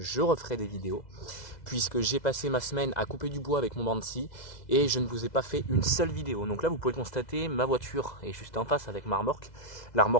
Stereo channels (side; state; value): right; late; 2.0 ms